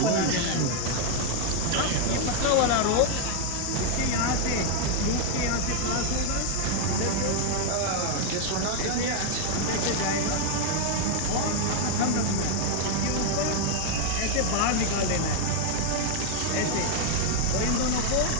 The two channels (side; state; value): both; different; correlation 0.00